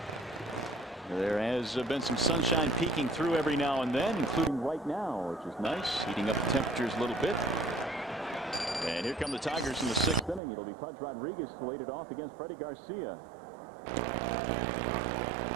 There has been some sunshine peeking through every now and then, including right now, which is nice, heating up the temperatures a little bit. And here come the Tigers in the 6th inning. It'll be Pudge Rodriguez to lead it off against Freddie Garcia.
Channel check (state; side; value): drops out; left; at 10.4 s